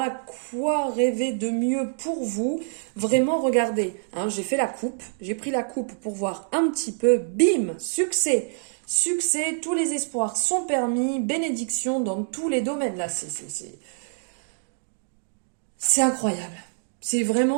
quoi rêver de mieux pour vous? Vraiment, regardez, hein, j'ai fait la coupe, j'ai pris la coupe pour voir un petit peu, bim, succès. Succès, tous les espoirs sont permis, bénédiction dans tous les domaines. Là, c'est incroyable. C'est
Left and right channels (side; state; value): left; silent; digital silence